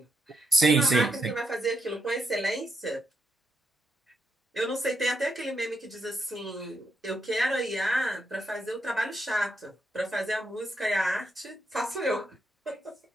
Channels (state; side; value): normal; both; correlation 0.82